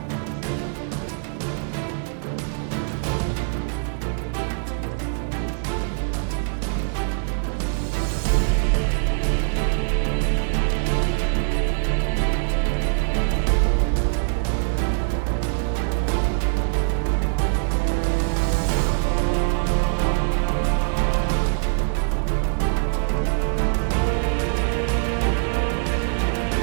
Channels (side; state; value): left; silent; digital silence